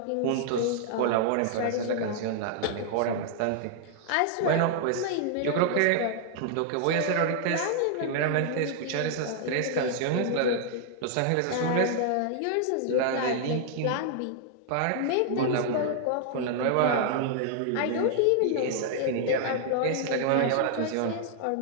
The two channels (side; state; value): both; different; correlation -0.01